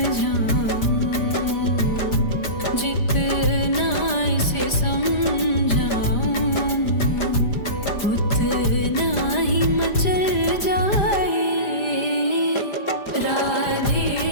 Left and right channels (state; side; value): late; right; 5.0 ms